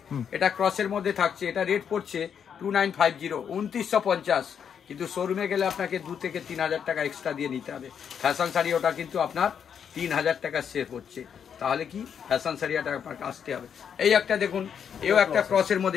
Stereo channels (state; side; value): quieter; right; 7.7 dB